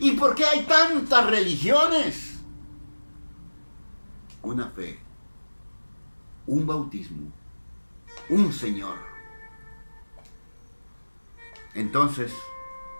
¿Y por qué hay tantas religiones? Una fe, un bautismo, un Señor. Entonces,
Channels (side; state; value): both; inverted; correlation -1.00